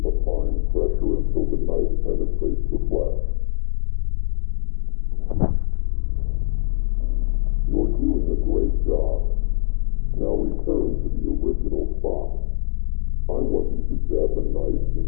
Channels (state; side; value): silent; right; 64 dB below the other